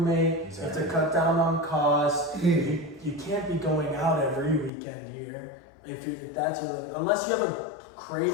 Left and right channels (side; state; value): right; drops out; at 4.7 s